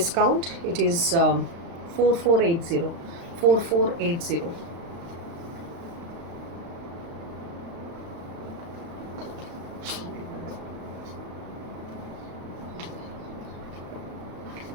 it is 4480. 4480.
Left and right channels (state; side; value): late; left; 35 ms